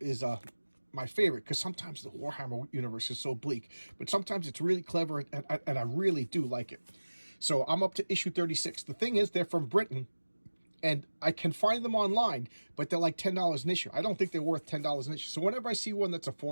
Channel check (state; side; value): inverted; both; correlation -1.00